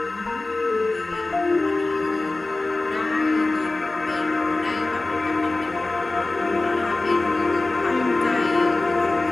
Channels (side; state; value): right; quieter; 3.1 dB